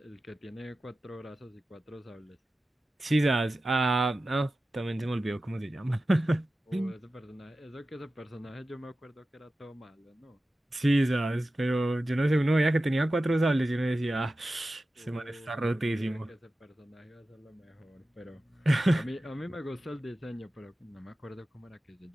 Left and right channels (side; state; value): both; normal; correlation 0.94